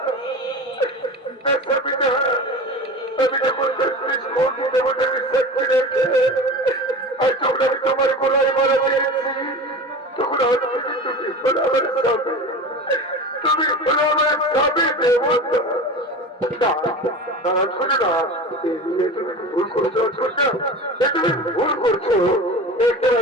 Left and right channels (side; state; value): both; normal; correlation 0.32